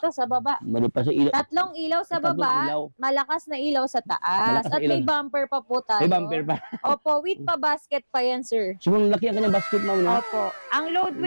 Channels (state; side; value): inverted; both; correlation -1.00